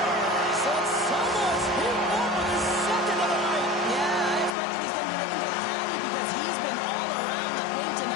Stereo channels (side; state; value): right; drops out; at 4.5 s